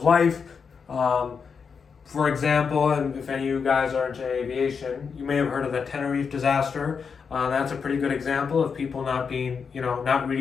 life. For example, and if any of you guys are into aviation, you may have heard of the Tenerife disaster. That's a pretty good example of people not being, not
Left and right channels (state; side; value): quieter; right; 5.9 dB